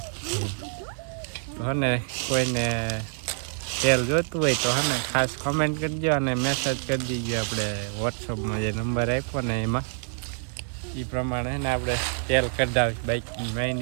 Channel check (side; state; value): left; silent; 60 dB below the other